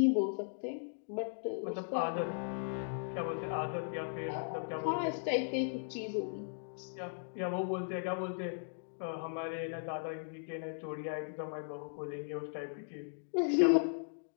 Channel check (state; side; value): silent; right; digital silence